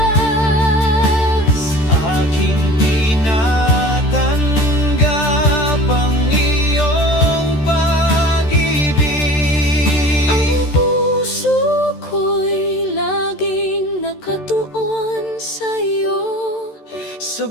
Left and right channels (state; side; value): late; right; 13 ms